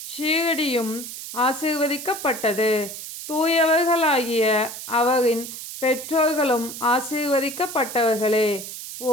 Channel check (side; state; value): right; noise; hiss, 10 dB below the sound